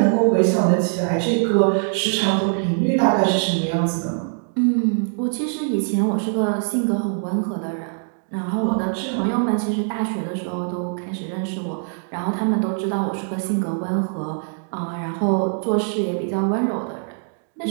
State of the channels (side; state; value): left; silent; digital silence